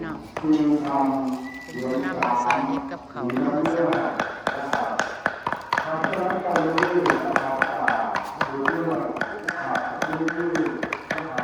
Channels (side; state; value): both; identical; correlation 1.00